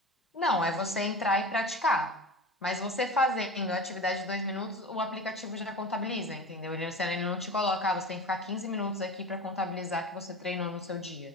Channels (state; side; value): normal; both; correlation 0.32